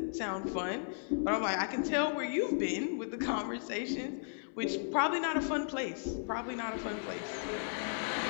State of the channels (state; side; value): silent; right; 54 dB below the other